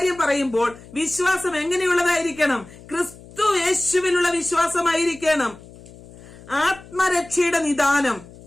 പറയുമ്പോൾ വിശ്വാസം എങ്ങനെയുള്ളതായിരിക്കണം? ക്രിസ്തു യേശുവിലുള്ള വിശ്വാസമായിരിക്കണം. ആത്മരക്ഷയുടെ നിദാനം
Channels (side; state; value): left; noise; hum, 20 dB below the sound